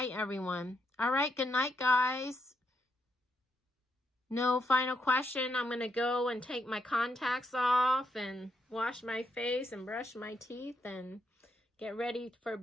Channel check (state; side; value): normal; both; correlation 0.79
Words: everyone. All right, good night, guys. No final question. I'm going to go and take my contacts off and wash my face and brush my teeth and get ready for